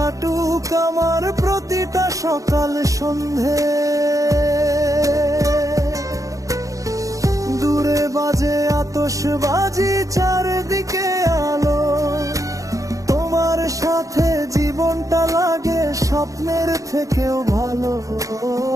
আমার প্রতিটা সকাল সন্ধে। দূরে বাজে আতশবাজি, চারদিকে আলো, তোমার সাথে জীবনটা লাগে স্বপ্নের থেকেও ভালো।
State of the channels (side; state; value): left; late; 0.16 ms